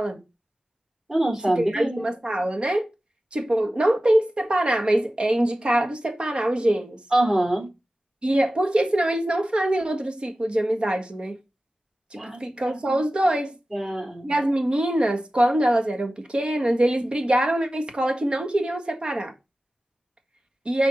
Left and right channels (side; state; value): both; normal; correlation 0.95